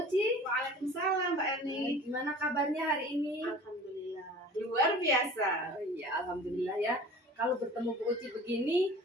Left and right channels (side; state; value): both; normal; correlation 0.43